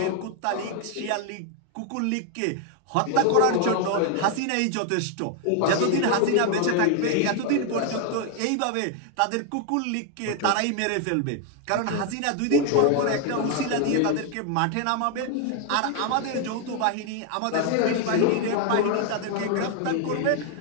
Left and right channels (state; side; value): different; both; correlation 0.00